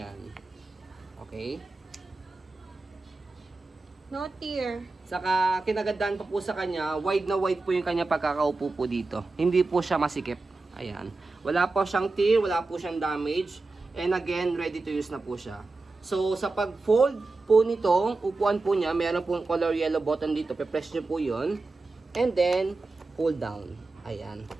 Okay. No tear. Saka kinagandaan pa po sa kanya, wide na wide po yung kanya pagkakaupo po dito. Hindi po siya masikip. Ayan. Wala po siyang tear, wala po siyang damage. And again, ready to use na po siya. So sa pag-fold po nitong upuan po niya, meron pong color yellow button dito. Pe-press nyo po yun. And then, pull down. Ayan.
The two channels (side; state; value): left; quieter; 3.5 dB